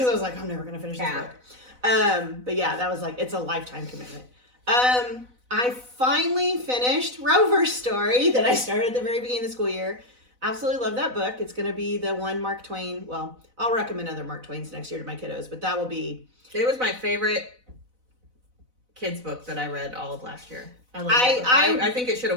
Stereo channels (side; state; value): left; late; 4.0 ms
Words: I was like, I'm never going to finish this book. But yeah, that was like, it's a lifetime commitment. I finally finished Rover's Story that I started at the very beginning of the school year. Absolutely love that book. It's going to be the one Mark Twain. Well, I'll recommend other Mark Twains next year to my kiddos, but that will be. It was my favorite kids book that I read all of last year. I think it should